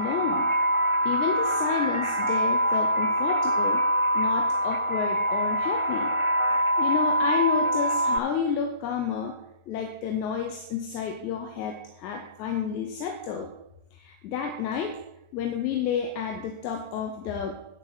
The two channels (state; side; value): late; right; 1.4 ms